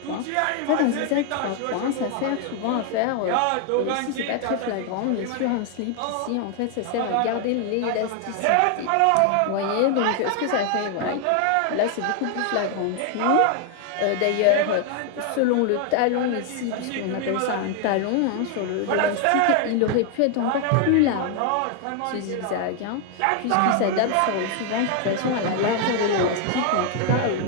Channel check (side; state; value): both; different; correlation 0.00